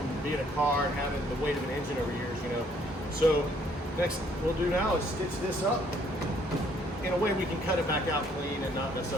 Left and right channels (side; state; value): both; normal; correlation 0.64